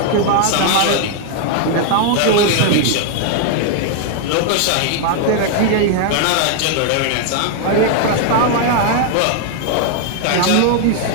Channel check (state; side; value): different; both; correlation 0.00